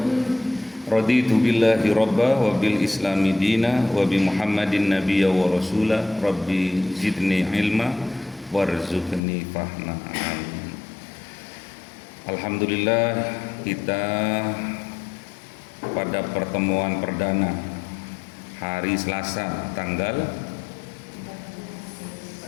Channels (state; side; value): drops out; right; at 9.2 s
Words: Raditu billahi rabba wa bil islami dina wa bi Muhammadin nabiyya wa rasula rabbi zidni ilma warzuqni fahma. Amin. Alhamdulillah, kita pada pertemuan perdana hari Selasa tanggal